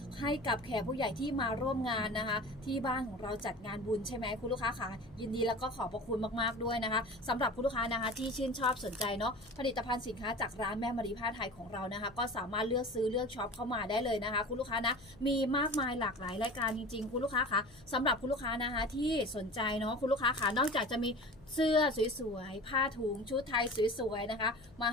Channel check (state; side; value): noise; left; hum, 25 dB below the sound